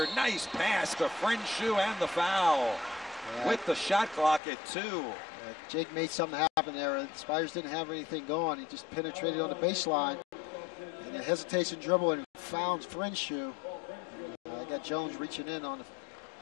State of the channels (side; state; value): right; drops out; at 4.4 s